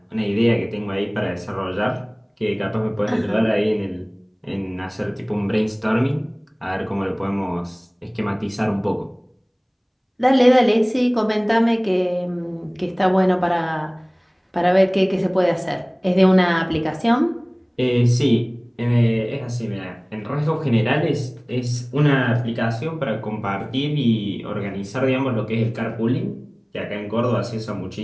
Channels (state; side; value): identical; both; correlation 1.00